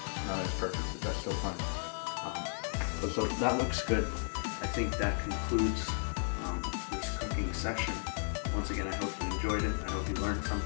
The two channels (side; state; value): right; silent; digital silence